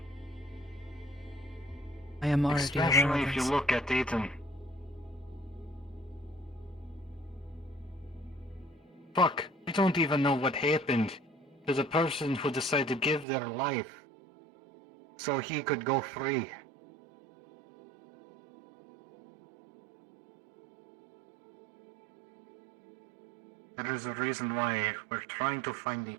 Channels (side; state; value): left; drops out; at 13.2 s